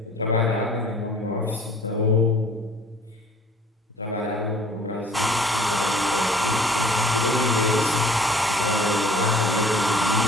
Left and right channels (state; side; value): normal; both; correlation 0.52